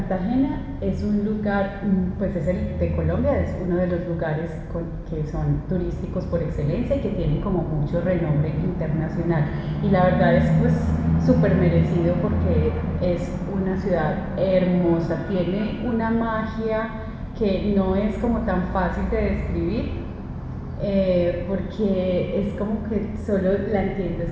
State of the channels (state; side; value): identical; both; correlation 1.00